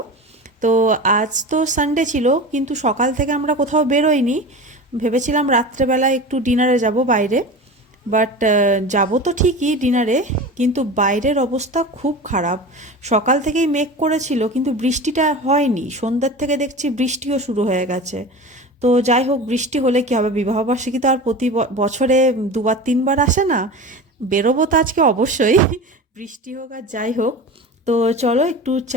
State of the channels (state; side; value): normal; both; correlation 0.31